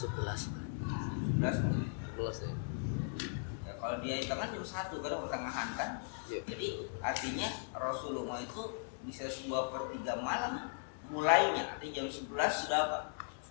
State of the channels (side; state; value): right; silent; digital silence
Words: ya. Ya kalau dia hitungan jam 1 karena pertengahan kan. Yeah. Jadi artinya Rasulullah itu bisa 2/3 malam mulainya. Artinya jam 11